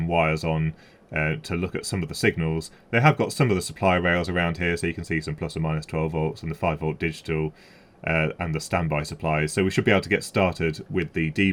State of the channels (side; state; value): both; identical; correlation 1.00